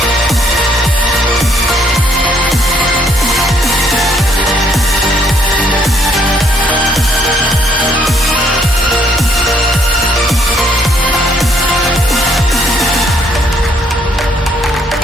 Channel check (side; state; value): both; normal; correlation 0.68